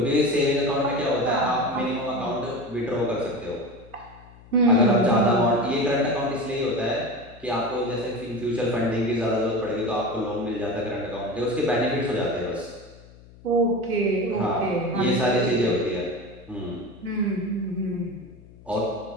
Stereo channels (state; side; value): noise; left; hum, 22 dB below the sound